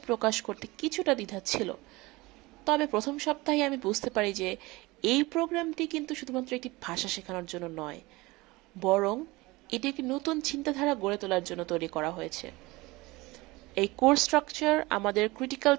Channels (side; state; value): left; quieter; 21.9 dB